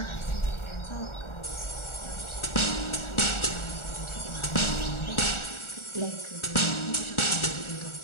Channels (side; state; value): right; late; 1.4 ms